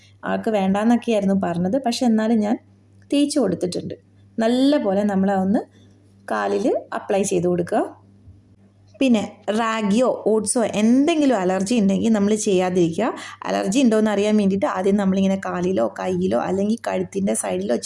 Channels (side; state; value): both; identical; correlation 1.00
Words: ആൾക്ക് വേണ്ടാന്നൊക്കെയായിരുന്നു പറഞ്ഞത്, പക്ഷെ എന്നാലും ഞാൻ തേച്ച് കൊടുത്തിട്ടുണ്ട്. നല്ല പോലെ നമ്മളൊന്ന് കാലിൽ അപ്ലൈ ചെയ്ത് കൊടുക്കുക. പിന്നെ റാഗിയോ ഓട്സോ എന്തെങ്കിലും അലർജി ഉണ്ടെങ്കിൽ നമ്മൾ ചെയ്യാതിരിക്കുക. അലർജി ഉണ്ടോയെന്ന് അറിയാൻ വേണ്ടിയിട്ട് ആദ്യം നമ്മളിങ്ങനെ കാലിലോ കയ്യിലോ അല്ലെങ്കിൽ കഴുത്തിൻ്റെ സൈഡിലോ